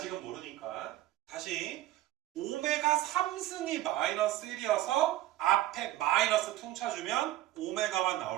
모르니까 다시 오메가 3승이 마이너스 1이어서 앞에 마이너스 퉁쳐주면 오메가만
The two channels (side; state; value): left; quieter; 14.6 dB